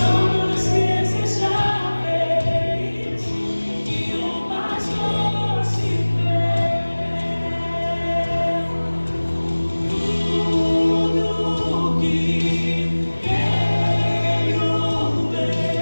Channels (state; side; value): inverted; both; correlation -1.00